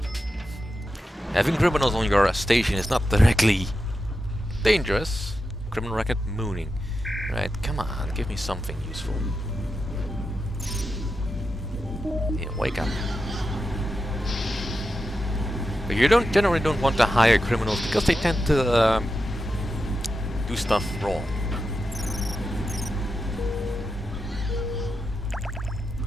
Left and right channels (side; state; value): both; normal; correlation 0.89